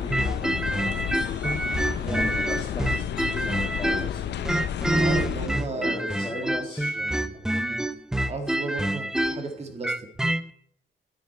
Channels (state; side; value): normal; both; correlation 0.81